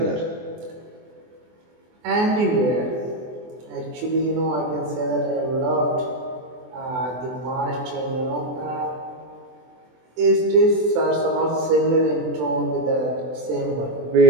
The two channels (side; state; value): left; late; 24 ms